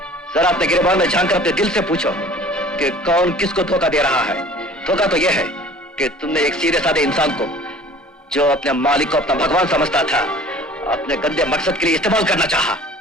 जरा अपने गिरबान में झांक कर अपने दिल से पूछो कि कौन किसको धोखा दे रहा है। धोखा तो यह है कि तुमने एक सीधे साधे इंसान को, जो अपने मालिक को अपना भगवान समझता था, अपने गंदे मकसद के लिए इस्तेमाल करना चाहा।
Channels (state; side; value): normal; both; correlation 0.47